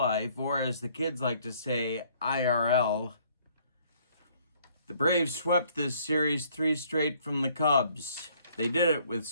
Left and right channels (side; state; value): both; inverted; correlation -0.62